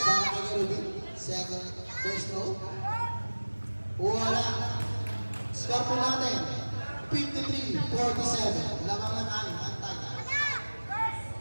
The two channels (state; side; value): inverted; both; correlation -1.00